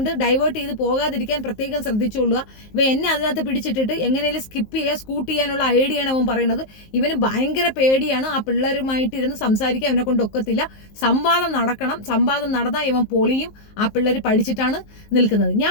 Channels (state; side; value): late; right; 19 ms